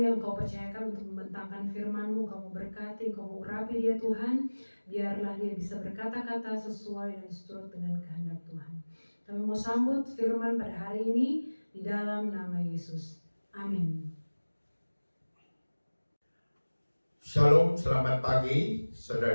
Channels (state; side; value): inverted; both; correlation -1.00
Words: Kau percayakan untuk membentangkan firman-Mu, Kau memberkati, Kau mengurapi dia Tuhan, biarlah dia bisa berkata-kata sesuai dan seturut dengan kehendak Tuhan. Kami mau sambut firman pada hari ini di dalam nama Yesus. Amin. Shalom, selamat pagi